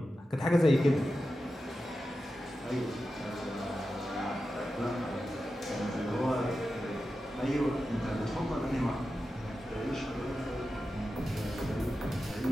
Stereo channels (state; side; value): normal; both; correlation 0.91